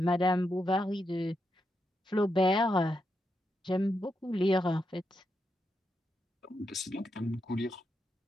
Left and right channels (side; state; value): both; normal; correlation 0.84